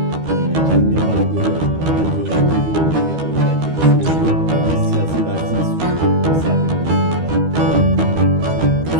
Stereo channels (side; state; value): left; late; 13 ms